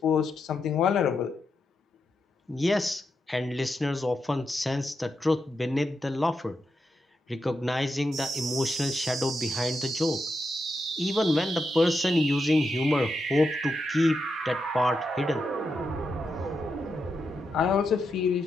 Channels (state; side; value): normal; both; correlation 0.85